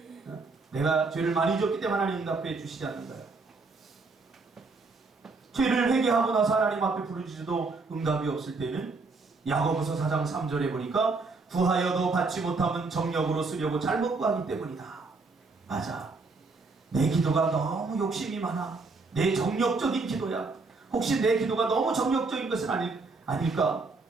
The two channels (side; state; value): left; quieter; 3.9 dB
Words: 내가 죄를 많이 졌기 때문에 하나님 응답해 주시지 않는 거야. 죄를 회개하고 나서 하나님 앞에 부르짖어도 응답이 없을 때는 야고보서 4장 3절에 보니까 구하여도 받지 못하면 정력으로 쓰려고 잘못 구하기 때문이다. 맞아. 내 기도가 너무 욕심이 많아. 내 정력적인 기도야. 혹시 내 기도가 너무 정력적인 것은 아닐까?